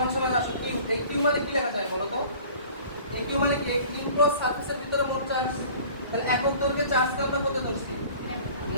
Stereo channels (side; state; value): both; inverted; correlation -0.47